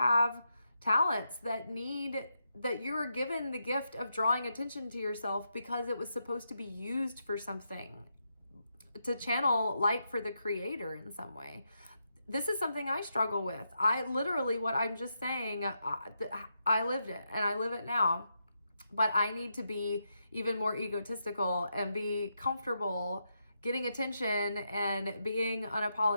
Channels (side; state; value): both; inverted; correlation -0.83